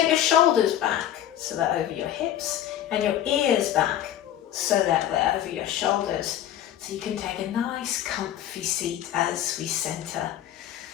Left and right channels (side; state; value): right; quieter; 11.4 dB